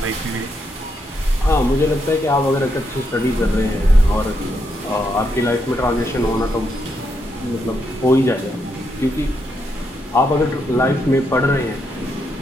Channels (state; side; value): normal; both; correlation 0.80